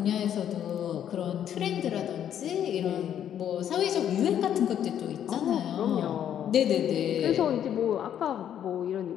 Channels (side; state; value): right; quieter; 9.9 dB